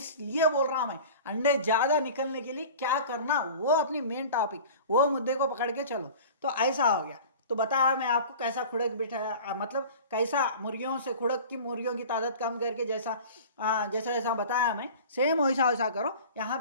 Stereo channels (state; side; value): inverted; both; correlation -0.39